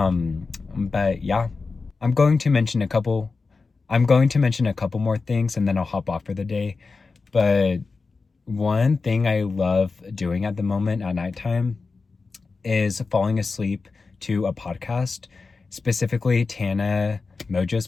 But yeah, I'm going to mention a couple more things, and then I'll hop off for the day. But one thing I love doing at the moment at nighttime is falling asleep to a podcast, specifically Tana Mojo's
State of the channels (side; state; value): right; quieter; 4.2 dB